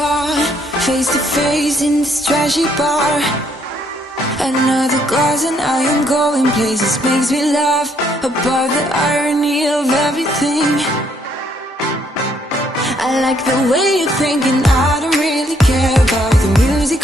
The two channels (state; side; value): normal; both; correlation 0.69